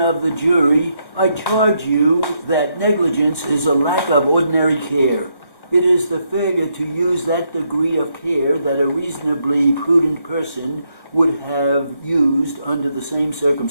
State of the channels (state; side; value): late; right; 1.1 ms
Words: the jury, I charge you that negligence is a lack of ordinary care. It is the failure to use that degree of care that a reasonably prudent person would have used under the same